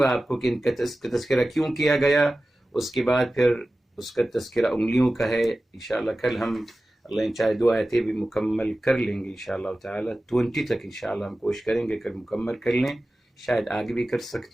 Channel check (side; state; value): both; normal; correlation 0.95